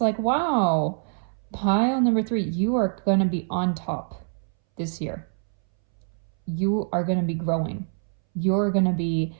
like, wow, pile number 3, you are going to be on top this year. You are going to be growing. You're going to be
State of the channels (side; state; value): left; silent; 62 dB below the other